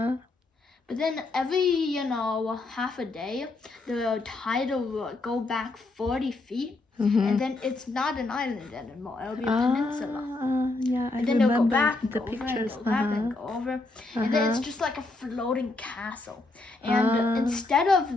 But then every, half a day, the tide will go back 40 feet, and then it's not an island anymore. It'll be a peninsula. Yeah, and then they'll go back and the go over pictures. and go back and go over. And then it's just like a floating castle. And instead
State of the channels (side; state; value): right; quieter; 3.2 dB